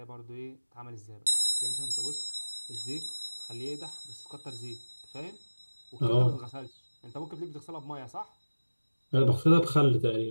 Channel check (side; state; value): both; inverted; correlation -1.00